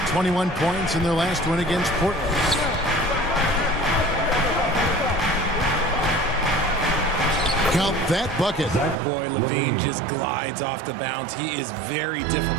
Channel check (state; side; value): drops out; left; at 9.0 s